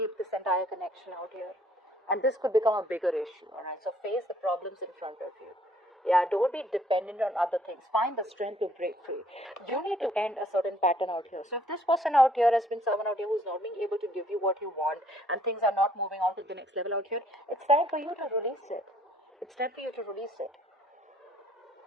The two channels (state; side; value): normal; both; correlation 0.62